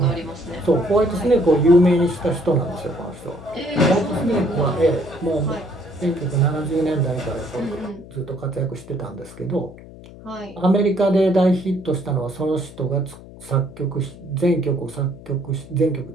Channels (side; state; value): left; noise; hum, 18 dB below the sound